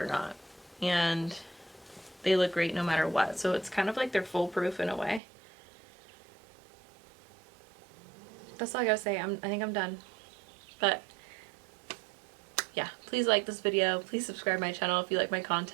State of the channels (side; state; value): left; drops out; at 5.2 s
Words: not. And they look great no matter what. So it's kind of like they're foolproof in a way. That's all I gotta say. I think I'm done. But yeah, please like this video. Please subscribe to my channel if you like my